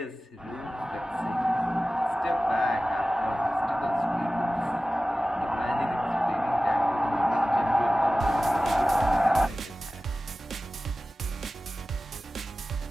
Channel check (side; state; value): both; normal; correlation 0.96